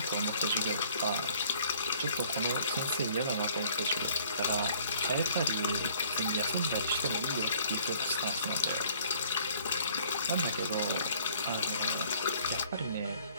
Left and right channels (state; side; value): inverted; both; correlation -0.57